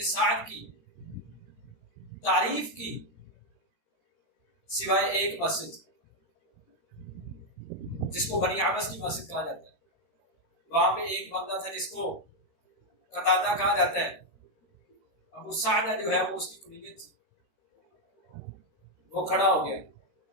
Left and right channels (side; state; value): right; late; 13 ms